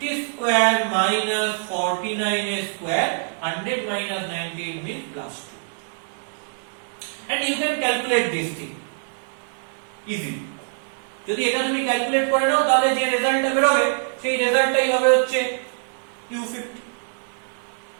square minus 49 square, 100 minus 98 means plus 2. And you can calculate this thing easily. যদি এটা তুমি calculate করে নাও তাহলে যে রেজাল্টটা বের হবে সেই রেজাল্টটাই হবে হচ্ছে u50।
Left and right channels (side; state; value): left; silent; digital silence